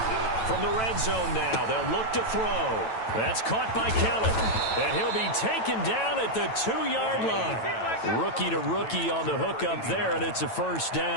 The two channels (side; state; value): right; late; 9.1 ms